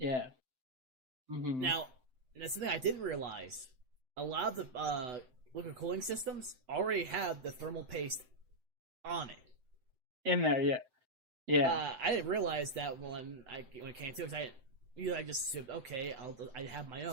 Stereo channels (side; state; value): left; late; 7.8 ms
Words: Mm-hmm. Now, that's something I didn't realize. A lot of the liquid cooling systems already have the thermal paste on it. In there, yeah. Yeah. I didn't realize that when it came to it. I just said, okay, I have my